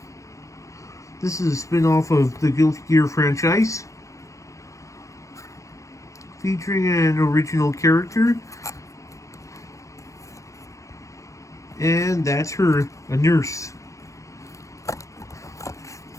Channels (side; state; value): right; late; 0.15 ms